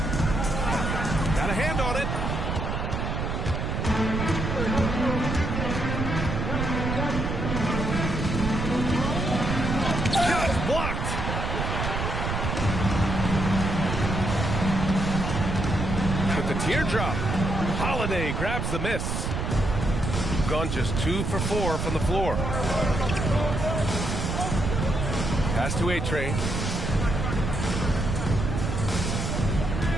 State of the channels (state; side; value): noise; right; rumble, 2 dB below the sound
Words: Got a hand on it. Just blocked. With the teardrop, Holiday grabs the miss. Gone just 2 for 4 from the floor. Pass to A-Train.